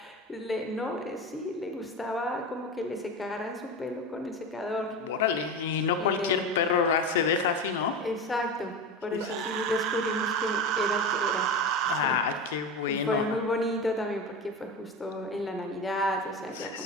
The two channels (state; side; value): normal; both; correlation 0.24